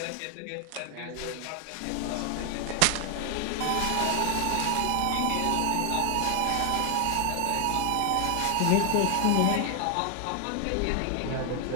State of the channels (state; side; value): different; both; correlation 0.00